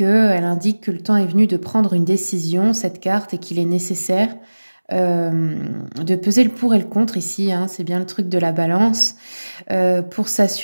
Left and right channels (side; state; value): both; inverted; correlation -1.00